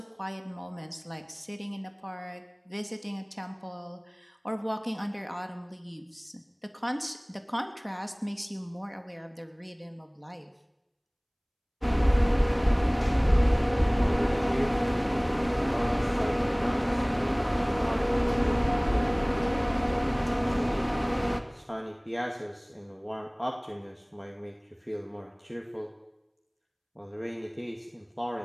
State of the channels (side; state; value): both; identical; correlation 1.00